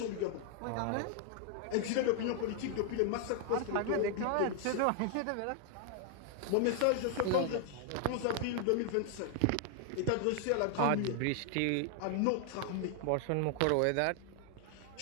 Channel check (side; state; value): both; different; correlation 0.00